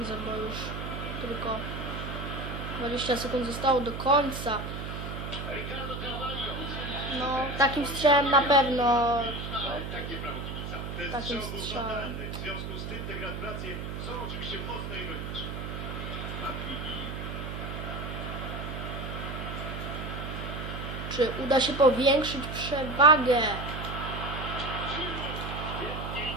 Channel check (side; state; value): right; noise; hum, 6 dB below the sound